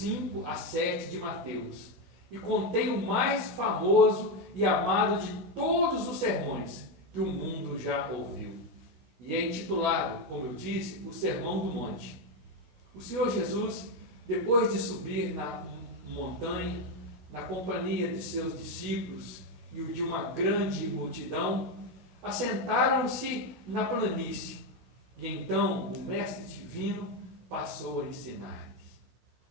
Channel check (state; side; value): late; left; 16 ms